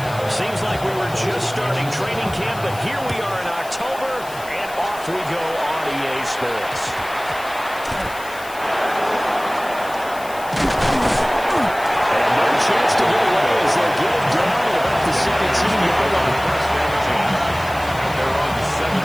Seems like we were just starting training camp, but here we are in October, and off we go on EA Sports. And no chance to get away as they get it down at about the 17-yard line. They're on the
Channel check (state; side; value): noise; left; hiss, 18 dB below the sound